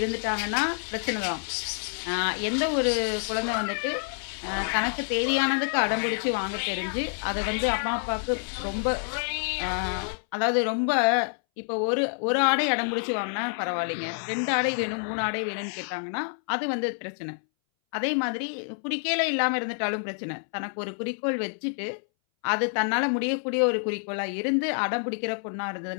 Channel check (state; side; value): silent; right; 60 dB below the other